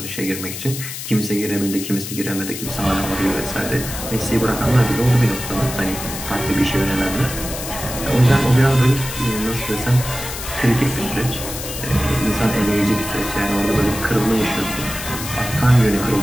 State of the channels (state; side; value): noise; left; hiss, 8 dB below the sound